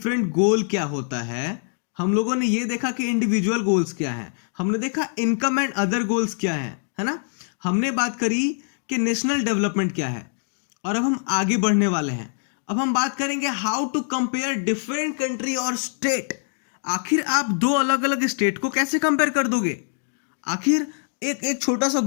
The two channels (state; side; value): silent; right; 63 dB below the other